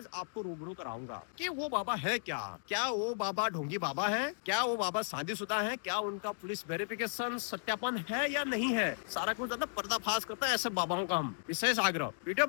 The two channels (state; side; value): silent; right; digital silence